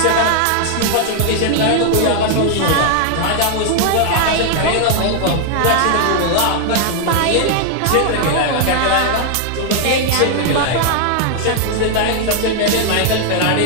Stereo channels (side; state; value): both; different; correlation 0.00